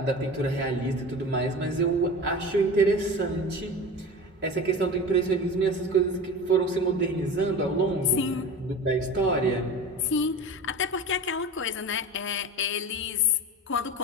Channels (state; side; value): normal; both; correlation 0.32